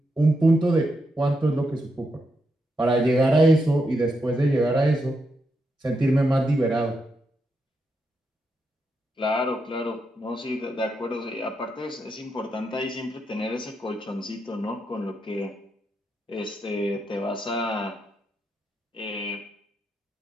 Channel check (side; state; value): both; normal; correlation 0.83